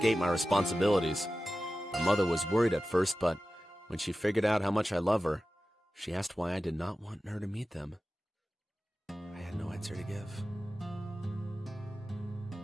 my responsibilities. My mother was worried at first, but when she figured out how much I love her, she asked why I did not want her to meet them. I had no answer to give.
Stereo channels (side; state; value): both; normal; correlation 0.95